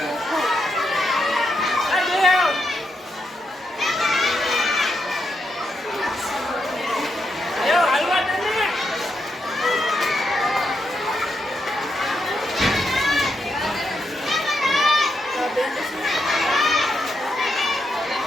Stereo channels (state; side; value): normal; both; correlation 0.82